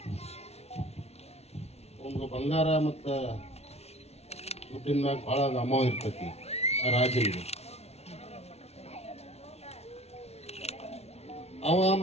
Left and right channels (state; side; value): late; right; 0.31 ms